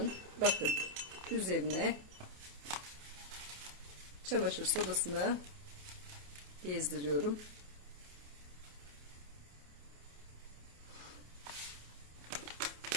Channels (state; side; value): late; left; 28 ms